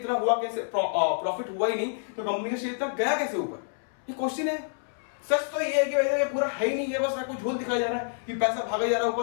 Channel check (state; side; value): silent; right; 59 dB below the other